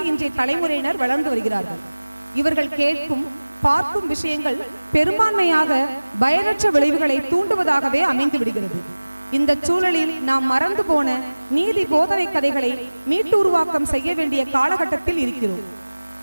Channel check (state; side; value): inverted; both; correlation -1.00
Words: இன்றைய தலைமுறையினர் வளர்ந்து வருகிறார்கள். இவர்கள் கேட்கும் பார்க்கும் விஷயங்கள் பெரும்பான்மையாக பயனற்ற விளைவுகளை தூண்டுவதாகவே அமைந்து விடுகிறது. இந்த சூழலில் நாம் மறந்து போன நீதி போதனை கதைகளை மீட்டு உருவாக்கம் செய்ய வேண்டிய காலகட்டத்தில் இருக்கிறோம்.